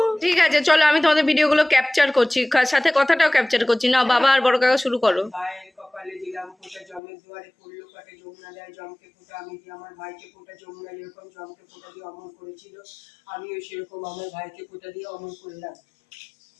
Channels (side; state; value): right; drops out; at 7.0 s